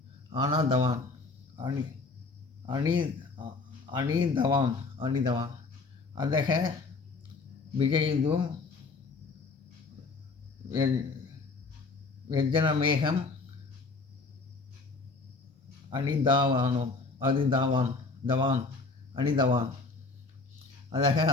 அணிதவான் அதக விஜயிதும் வெஜ்ஜனமேகம் அணிதவான் அதக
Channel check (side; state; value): right; quieter; 4.0 dB